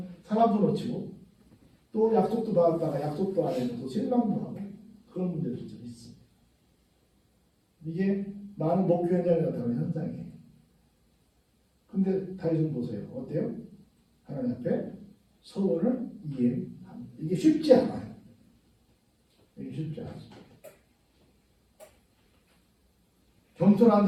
사람도 놓치고 또 약속도 받았다가 약속도 안 해서 실망도 하고 그런 문제들도 좀 있습니다. 이게 많은 목표 현장에 나타나는 현상이에요. 근데 다윗은 보세요. 어때요? 하나님 앞에 서원을 이행합니다. 이게 쉽지 않아요. 이게 쉽지 않습니다. 겸손한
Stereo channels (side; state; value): both; identical; correlation 1.00